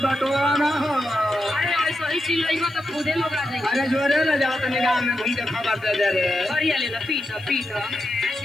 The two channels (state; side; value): noise; right; hiss, 27 dB below the sound